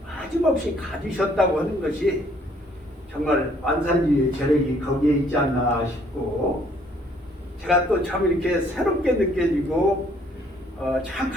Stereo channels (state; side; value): normal; both; correlation 0.63